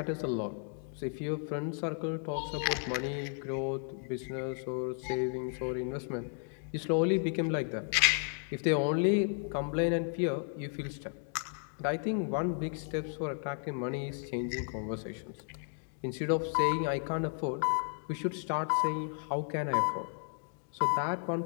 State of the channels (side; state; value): right; silent; 55 dB below the other